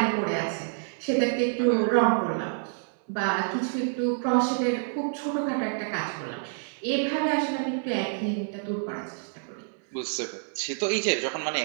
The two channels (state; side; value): silent; left; 60 dB below the other